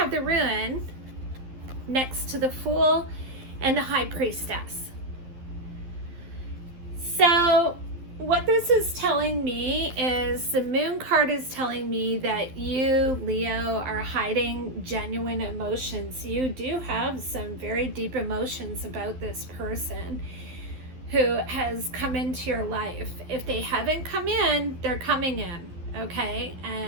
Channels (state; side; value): late; left; 12 ms